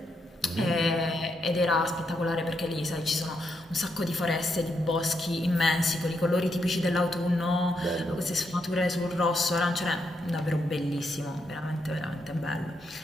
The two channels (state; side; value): normal; both; correlation 0.80